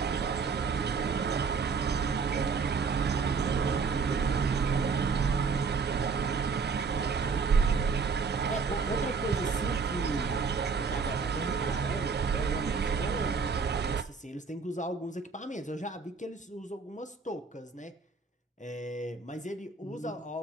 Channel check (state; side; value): quieter; left; 5.1 dB